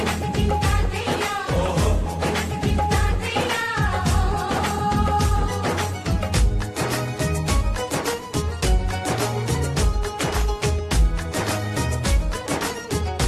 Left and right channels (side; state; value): both; identical; correlation 1.00